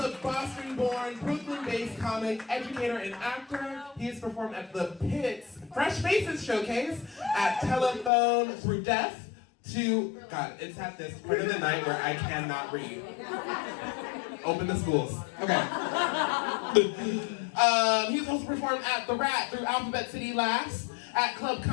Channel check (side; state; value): right; drops out; at 8.1 s